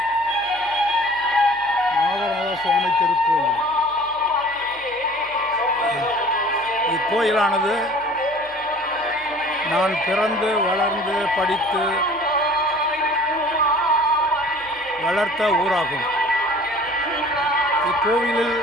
நாகநாத சுவாமி திருக்கோயில். இக்கோயிலானது நான் பிறந்து வளர்ந்து படித்து வளர்த்த ஊராகும். இக்கோவிலில்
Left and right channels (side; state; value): left; noise; hum, 27 dB below the sound